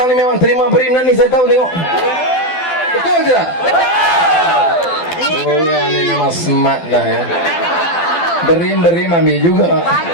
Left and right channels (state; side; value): late; right; 12 ms